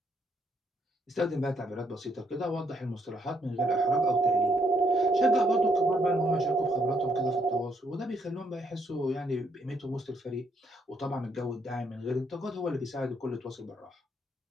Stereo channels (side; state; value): both; normal; correlation 0.73